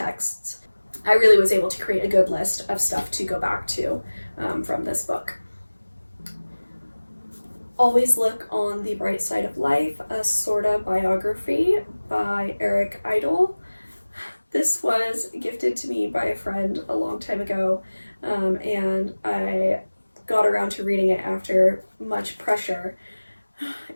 I really was able to create a good list of stuff to go back to from this book. Always Look on the Bright Side of Life, a sorta biography by Eric Idle. This was gifted to me by a friend a long time ago, and I got around to reading it after much pressure,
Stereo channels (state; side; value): inverted; both; correlation -1.00